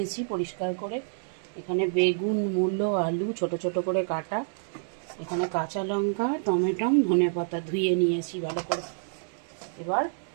পরিষ্কার করে। এখানে বেগুন, মূলো, আলু ছোট ছোট করে কাটা। এখানে কাঁচা লঙ্কা, টমেটো, ধনেপাতা ধুয়ে নিয়েছি ভালো করে। এবার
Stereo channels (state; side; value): silent; left; digital silence